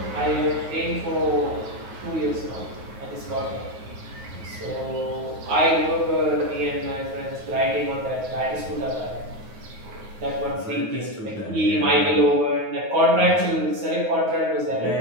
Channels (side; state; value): left; late; 9.4 ms